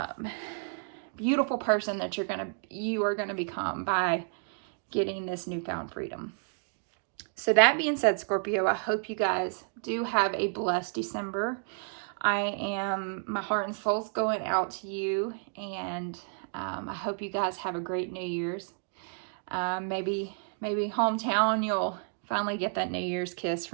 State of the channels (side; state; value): left; silent; 57 dB below the other